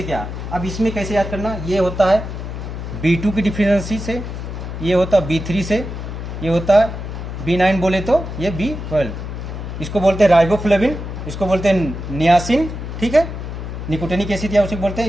क्या। अब इसमें कैसे याद करना, ये होता है B2 की डिफिशियंसी से, ये होता है B3 से, ये होता है B9 बोले तो ये B12, इसको बोलते हैं राइबोफ्लेविन, इसको बोलते हैं नियासिन, ठीक है, निकोटिनिक एसिड या उसे बोलते हैं,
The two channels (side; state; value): left; noise; hum, 7 dB below the sound